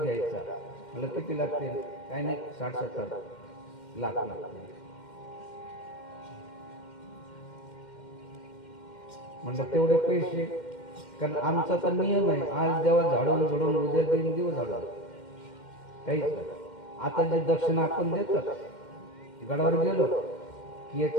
घ्यायचा, मला किती लागतील? काही नाही, 60-70 लाख लागतील. म्हणलं तेवढे पैसे, कारण आमचा तर नियम आहे, आज देवा झाडून झोडून उद्या देऊन देऊ झाडून, काहीच नाही. आता जे दक्षिणा आपण देतात, गडावर गेलो की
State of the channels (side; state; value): right; late; 2.1 ms